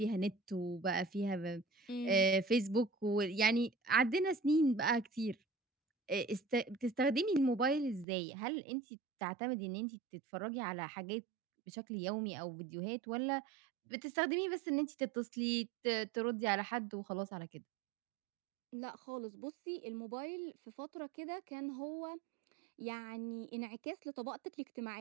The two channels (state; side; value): drops out; left; at 8.1 s